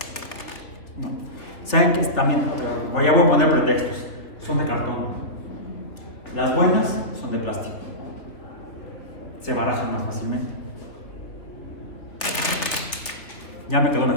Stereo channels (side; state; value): right; late; 3.1 ms